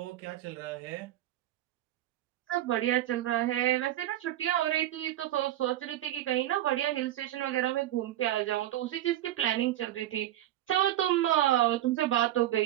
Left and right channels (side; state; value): left; quieter; 13.5 dB